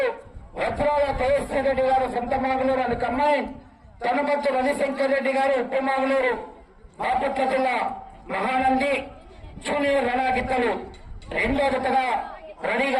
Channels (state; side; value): identical; both; correlation 1.00